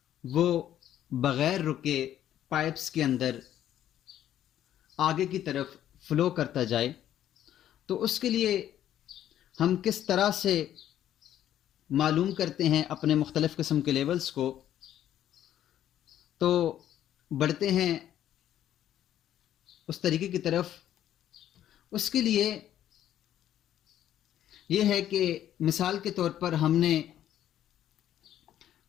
वो बग़ैर रुके पाइप्स के अंदर आगे की तरफ फ्लो करता जाए। तो उसके लिए हम किस तरह से मालूम करते हैं अपने मुख्तलिफ़ किस्म के लेवल्स को, तो बढ़ते हैं उस तरीके की तरफ। उसके लिए यह है कि मिसाल के तौर पर हमने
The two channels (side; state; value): right; quieter; 11.4 dB